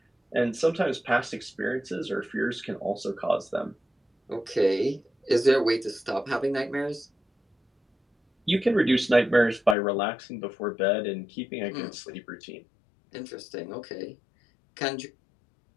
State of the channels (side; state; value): right; drops out; at 9.8 s